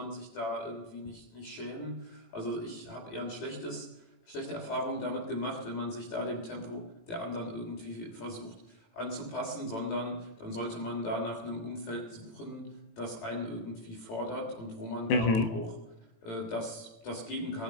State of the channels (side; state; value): right; late; 18 ms